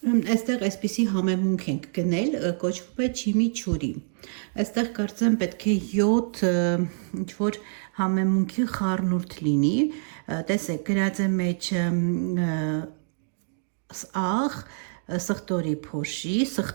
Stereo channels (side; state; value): left; silent; digital silence